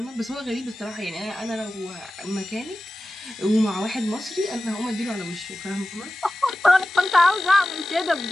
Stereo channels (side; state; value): both; normal; correlation 0.95